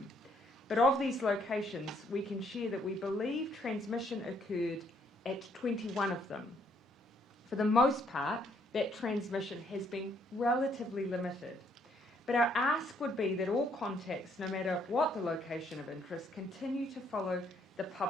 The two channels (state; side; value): normal; both; correlation 0.69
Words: But of these locations, we can share that we believe transmission occurred at 21 of them. For the most part, that transmission has been relatively limited. But our ask would be that all contacts, no matter what the location of interest, continue to follow the